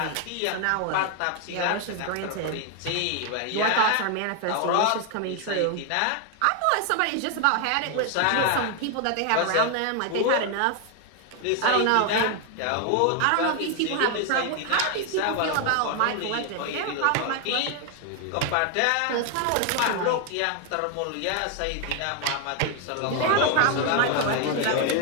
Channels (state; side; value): different; both; correlation 0.01